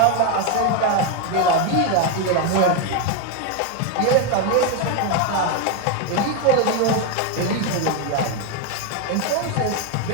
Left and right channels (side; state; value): both; different; correlation 0.02